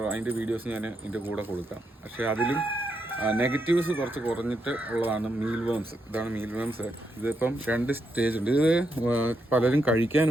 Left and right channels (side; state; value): both; normal; correlation 0.81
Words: അതിൻ്റെ വീഡിയോസ് ഞാൻ ഇതിൻ്റെ കൂടെ കൊടുക്കാം. പക്ഷേ അതിലും നെഗറ്റീവ്സ് കുറച്ച് കുറഞ്ഞിട്ട് ഉള്ളതാണ് മീൽ വേംസ്. ഇതാണ് മീൽ വേംസ്. ഇതിപ്പം 2 സ്റ്റേജ് ഉണ്ട്. ഇത് പലരും കഴിക്കാൻ